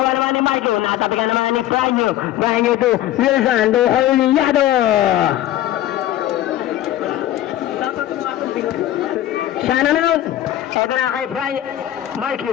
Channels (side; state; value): right; quieter; 13.3 dB